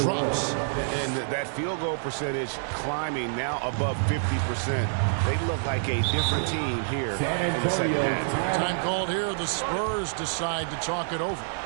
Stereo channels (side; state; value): left; silent; 60 dB below the other